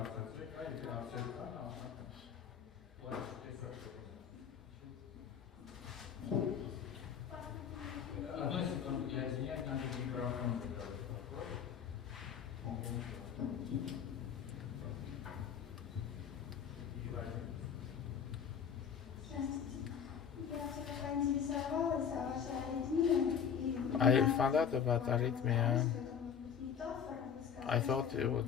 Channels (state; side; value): quieter; right; 7.6 dB